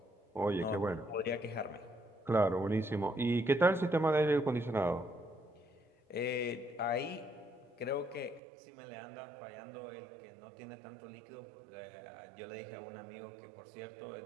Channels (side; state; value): left; drops out; at 8.4 s